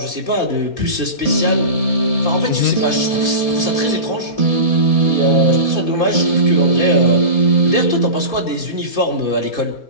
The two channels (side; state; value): right; late; 4.2 ms